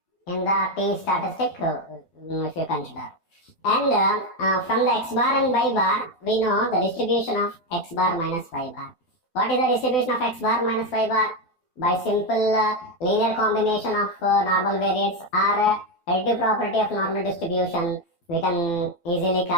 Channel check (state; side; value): late; right; 12 ms